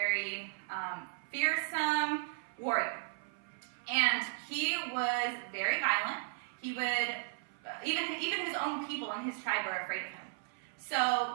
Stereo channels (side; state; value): left; silent; 54 dB below the other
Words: fearsome warrior, and he was very violent. He would even his own people in his tribe were afraid of him. So